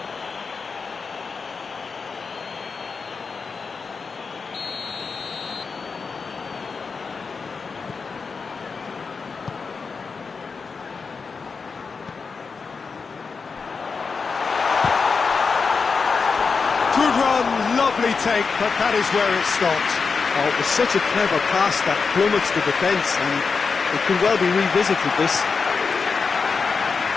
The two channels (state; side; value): quieter; right; 5.0 dB